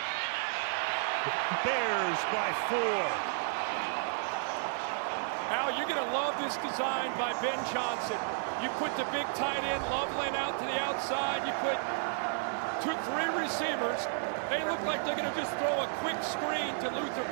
Bears by 4. Now you're going to love this design by Ben Johnson. You put the big tight end Loveland out to the outside. You put 3 receivers. They look like they're going to just throw a quick screen to Luther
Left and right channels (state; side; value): silent; left; digital silence